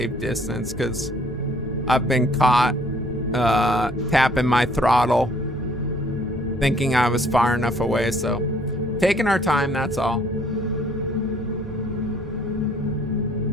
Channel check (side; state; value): both; normal; correlation 0.60